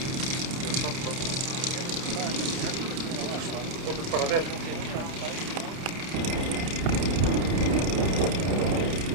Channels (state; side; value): late; left; 30 ms